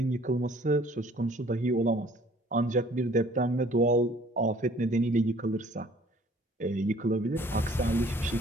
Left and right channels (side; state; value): both; normal; correlation 0.55